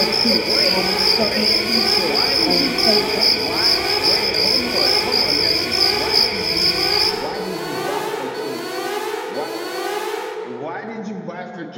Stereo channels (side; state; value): both; identical; correlation 1.00